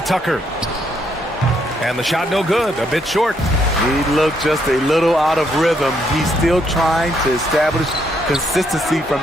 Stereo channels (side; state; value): both; normal; correlation 0.73